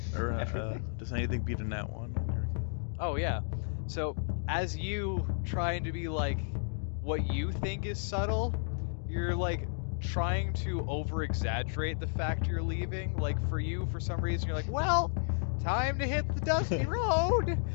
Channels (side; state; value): right; silent; digital silence